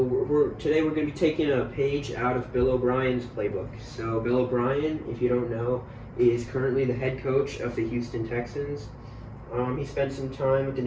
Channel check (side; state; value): both; identical; correlation 1.00